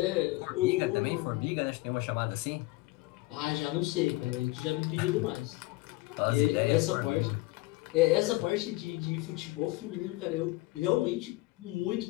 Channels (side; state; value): right; quieter; 20.7 dB